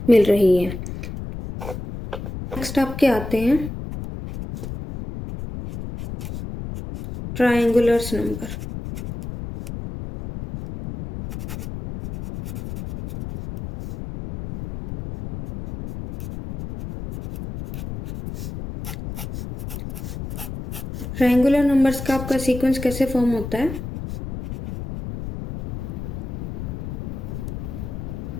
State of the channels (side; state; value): left; noise; rumble, 8 dB below the sound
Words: मिल रही हैं। नेक्स्ट आपके आते हैं ट्रायंगुलर्स नंबर। ट्रायंगुलर नंबर्स का आपका सीक्वेंस कैसे फॉर्म होता है,